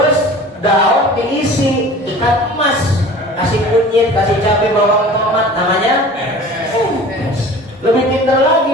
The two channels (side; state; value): both; normal; correlation 0.42